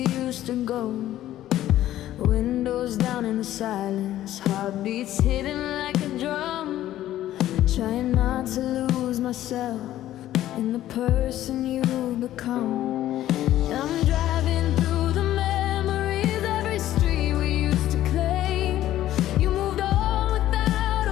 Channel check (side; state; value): right; quieter; 13.4 dB